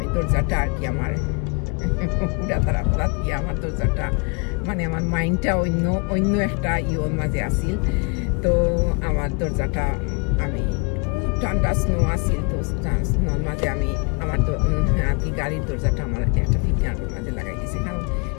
দরজাটা আর কি আমার পুরা তারা গিয়ে আমার দরজাটা মানে আমার মাইন্ডটা অন্য একটা ইয়োর মাঝে আসিল। তো আমার দরজাটা আমি ঠান্ডা স্নো আসিল তো স্নোর মাঝে আমি আমার আর কি গাড়ির দরজাটা আমার একটা ফিটনার মাঝে লাগাই দিয়েছি কারণ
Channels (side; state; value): right; quieter; 32.6 dB